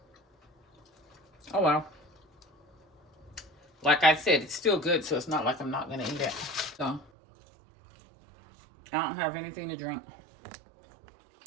Oh well. Like I said, it's still good, so it's not like I'm not gonna eat it. So I don't have anything to drink.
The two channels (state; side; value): drops out; left; at 7.1 s